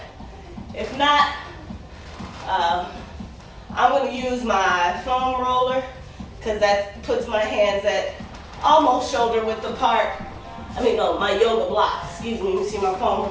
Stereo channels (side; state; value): both; identical; correlation 1.00